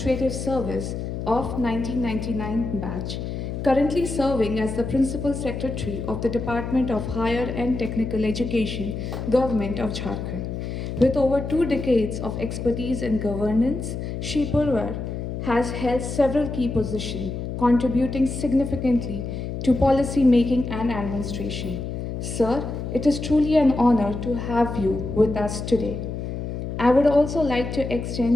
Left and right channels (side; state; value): left; noise; hum, 5 dB below the sound